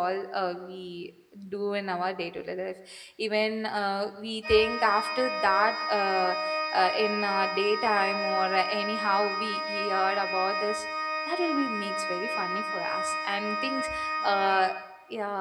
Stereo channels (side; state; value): both; identical; correlation 1.00